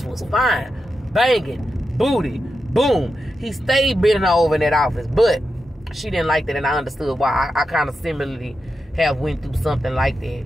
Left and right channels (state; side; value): normal; both; correlation 0.88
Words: was fine. Banging. Booty. Boom. He stayed bending her over in that office. But she didn't like that, and I understood why. I kind of similarly have went through something like that.